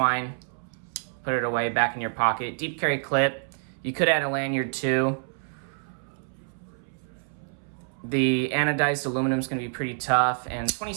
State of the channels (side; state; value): left; silent; 60 dB below the other